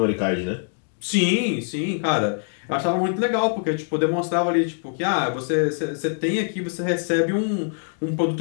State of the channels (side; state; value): right; silent; digital silence